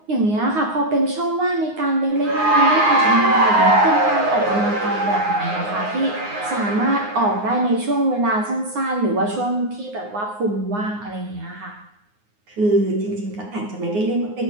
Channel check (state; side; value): late; left; 9.6 ms